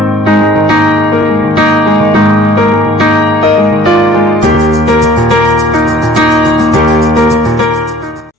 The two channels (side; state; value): both; normal; correlation 0.54